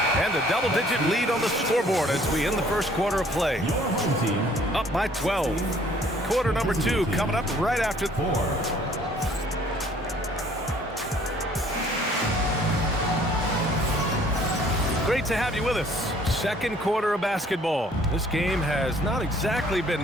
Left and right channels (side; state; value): both; normal; correlation 0.58